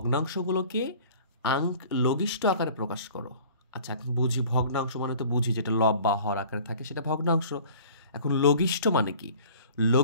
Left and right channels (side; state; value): both; inverted; correlation -0.47